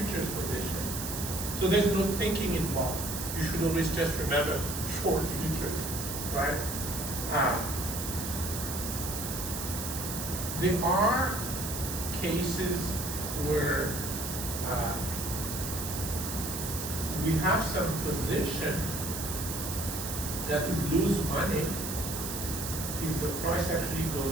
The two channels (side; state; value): right; noise; hiss, 5 dB below the sound